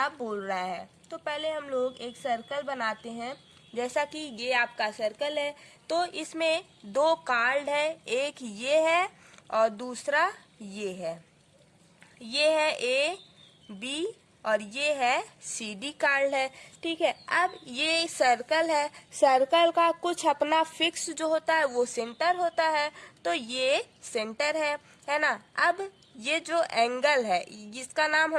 बोल रहा है। तो पहले हम लोग एक सर्कल बनाते हैं। जैसा कि ये आपका सर्कल है, तो इसमें दो कार्ड है, एक ये है और दूसरा ये है। ये है ए बी और ये है सी डी कार्ड है। ठीक है, अब ये सर्कल है, सर्कल का कुछ अपना फिक्स जो होता है वो सेंटर होता है, तो ये सेंटर है ना। अब ये जो एंगल है जिसका नाम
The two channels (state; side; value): identical; both; correlation 1.00